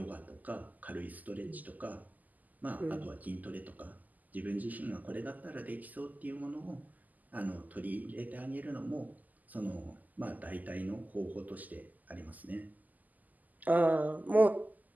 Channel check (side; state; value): left; late; 0.081 ms